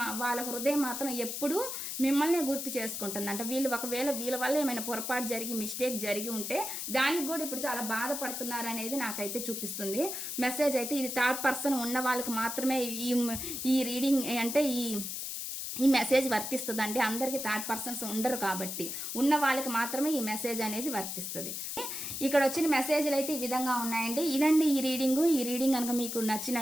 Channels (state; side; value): noise; left; hiss, 5 dB below the sound